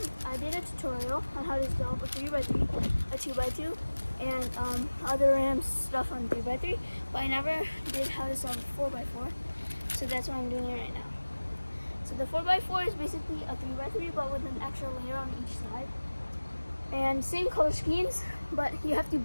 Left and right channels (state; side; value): inverted; both; correlation -1.00